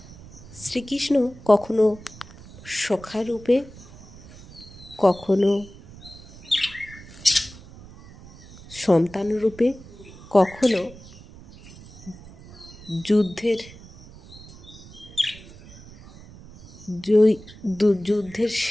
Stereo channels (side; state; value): right; noise; rumble, 19 dB below the sound